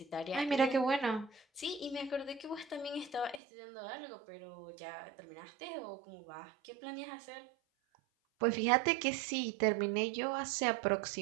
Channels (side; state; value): left; drops out; at 3.4 s